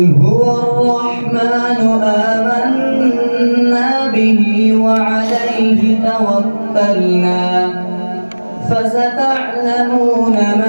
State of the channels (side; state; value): both; inverted; correlation -1.00